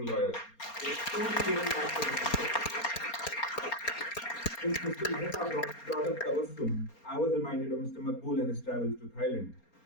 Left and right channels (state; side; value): late; right; 4.3 ms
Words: lawyers. They truly given back to the system. Since Mr. Mehta brought up Tabassum, I was reminded of Mr. Makbul and his travels to Thailand.